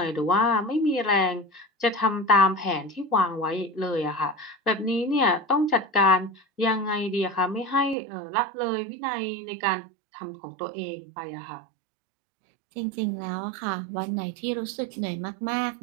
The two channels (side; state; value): left; drops out; at 8.0 s